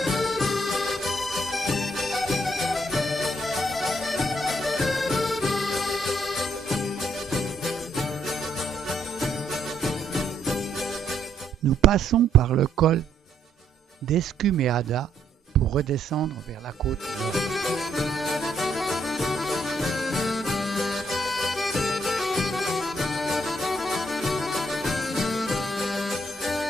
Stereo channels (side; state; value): both; normal; correlation 0.72